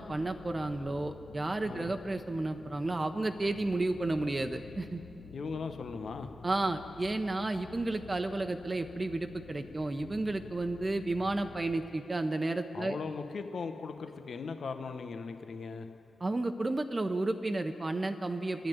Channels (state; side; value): normal; both; correlation 0.95